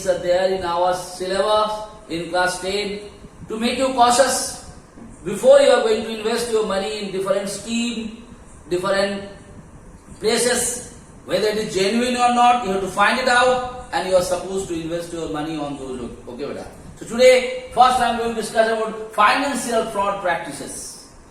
are there in our syllabus in class 10 to make you cautious before you are going to invest your money in different scheme, different places, whether it is genuine or not. You have to find it out, and you are supposed to invest your money on those. Okay, beta. So today, first I am going to discuss about financial fraud practices.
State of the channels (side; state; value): both; identical; correlation 1.00